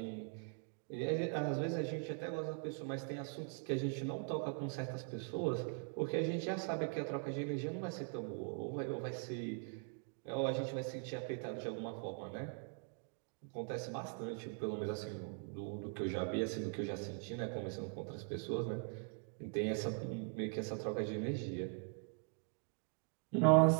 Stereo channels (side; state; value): left; quieter; 39.0 dB